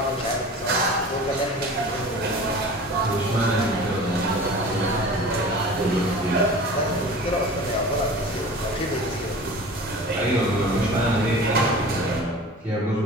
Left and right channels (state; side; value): normal; both; correlation 0.38